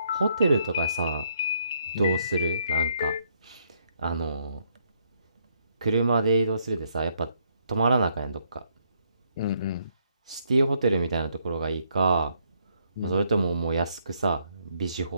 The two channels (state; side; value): inverted; both; correlation -0.72